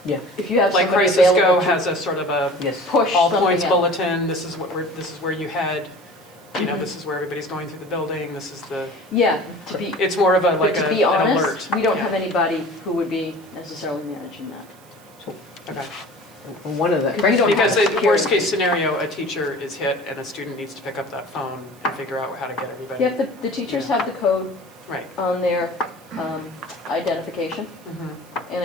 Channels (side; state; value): right; noise; hiss, 27 dB below the sound